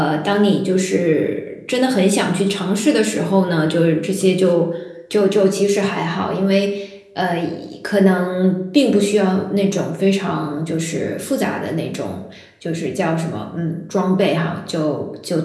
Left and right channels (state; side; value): identical; both; correlation 1.00